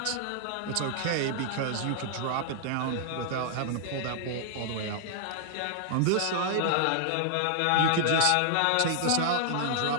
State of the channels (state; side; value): different; both; correlation -0.01